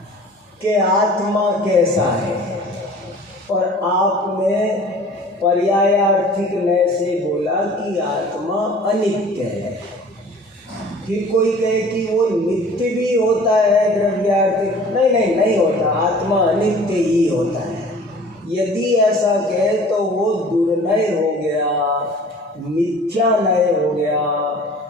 कि आत्मा कैसा है, और आपने पर्यायार्थिक नय से बोला कि आत्मा अनित्य है। फिर कोई कहे कि वो नित्य भी होता है द्रव्यार्थिक, नहीं होता, आत्मा अनित्य ही होता है। यदि ऐसा कहे तो वो दुर्नय हो गया, मिथ्या नय हो गया,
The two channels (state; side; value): normal; both; correlation 0.46